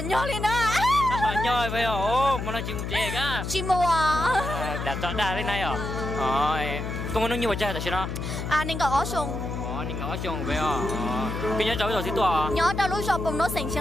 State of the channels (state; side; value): noise; left; hum, 4 dB below the sound